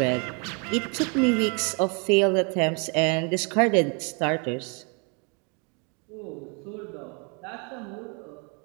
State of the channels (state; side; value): quieter; left; 34.4 dB